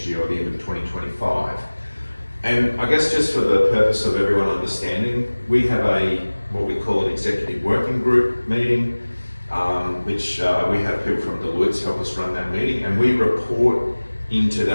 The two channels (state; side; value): inverted; both; correlation -1.00